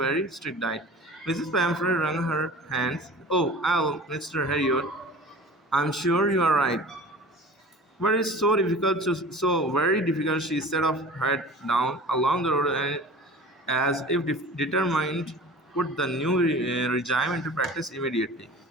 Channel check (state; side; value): normal; both; correlation 0.41